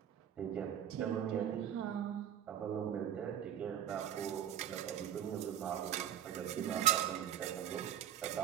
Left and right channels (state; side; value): quieter; left; 10.0 dB